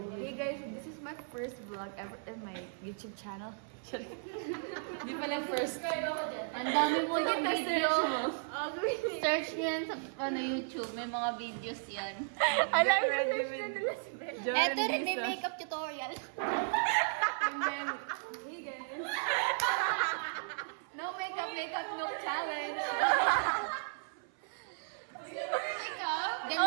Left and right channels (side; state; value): left; silent; 54 dB below the other